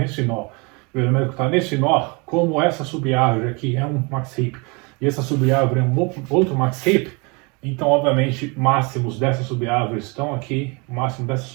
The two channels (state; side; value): quieter; left; 29.6 dB